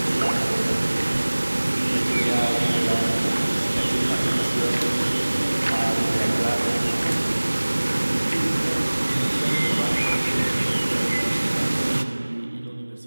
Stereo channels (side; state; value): both; inverted; correlation -1.00